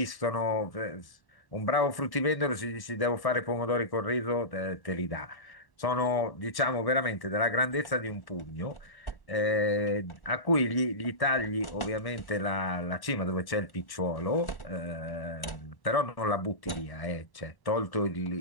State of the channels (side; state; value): right; late; 1.1 ms